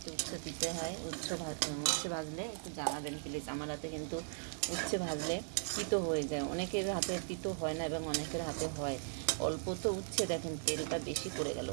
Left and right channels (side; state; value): left; silent; digital silence